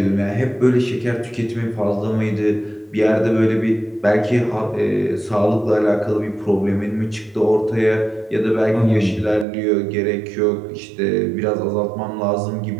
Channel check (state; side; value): drops out; left; at 9.5 s